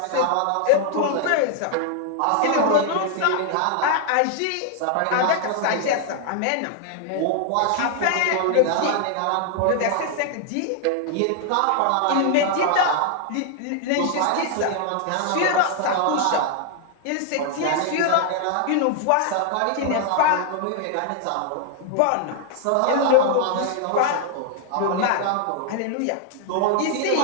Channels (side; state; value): both; different; correlation 0.00